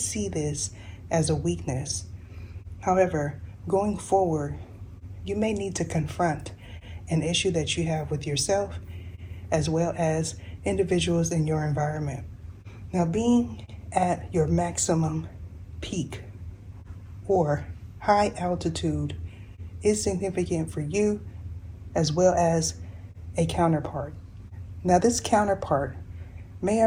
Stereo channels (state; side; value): identical; both; correlation 1.00